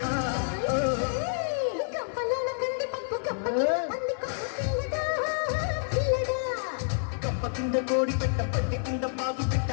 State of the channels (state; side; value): silent; right; 59 dB below the other